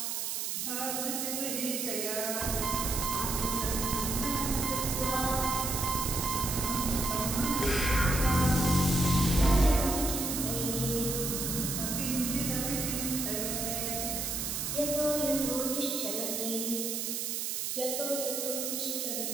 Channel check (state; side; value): noise; right; hiss, 2 dB below the sound